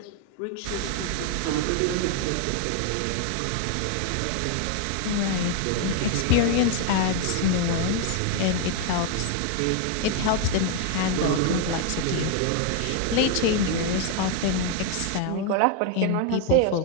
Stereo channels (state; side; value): different; both; correlation 0.00